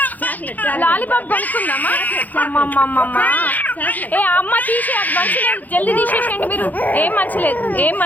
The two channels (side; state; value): right; late; 0.082 ms